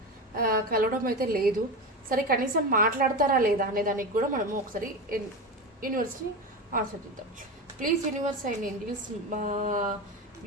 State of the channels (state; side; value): normal; both; correlation 0.21